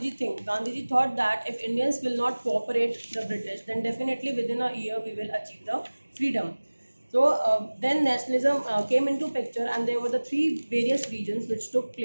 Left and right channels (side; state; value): both; inverted; correlation -1.00